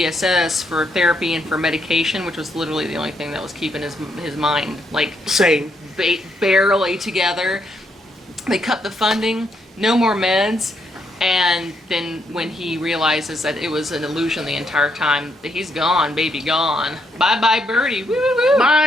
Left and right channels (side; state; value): both; normal; correlation 0.76